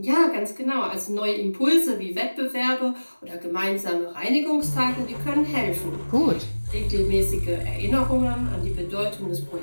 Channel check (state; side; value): inverted; both; correlation -1.00